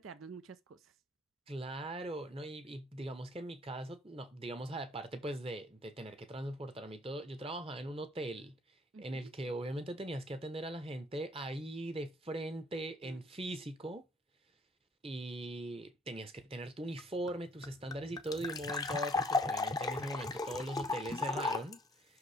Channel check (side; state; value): both; normal; correlation 0.61